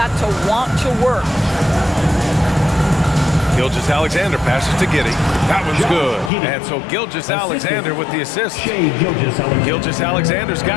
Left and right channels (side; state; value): right; drops out; at 6.3 s